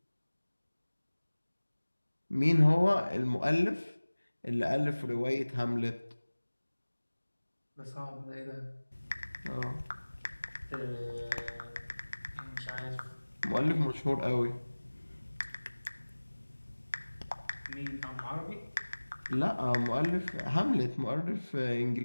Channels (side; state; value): both; inverted; correlation -1.00